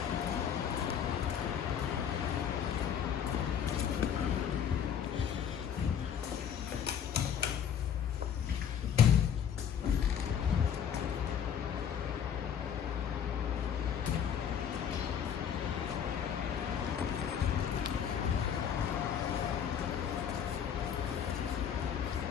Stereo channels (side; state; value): right; quieter; 8.4 dB